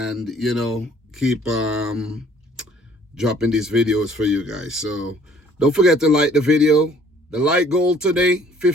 keep dropping these videos for you guys. So don't forget to like the video. The like goal today,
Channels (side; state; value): both; normal; correlation 0.57